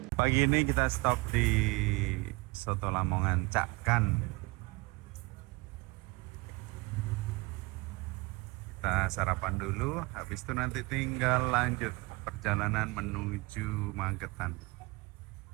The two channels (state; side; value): quieter; left; 25.2 dB